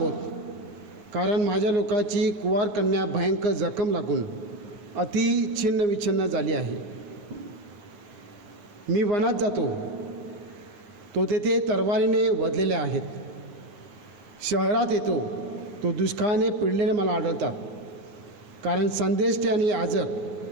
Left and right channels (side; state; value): left; late; 9.7 ms